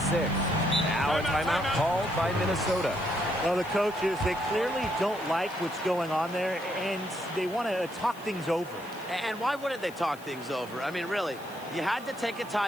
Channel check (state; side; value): noise; left; hiss, 22 dB below the sound